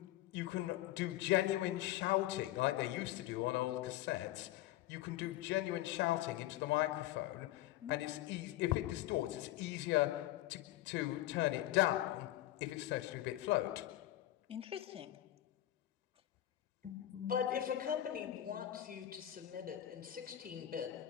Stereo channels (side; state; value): right; quieter; 14.4 dB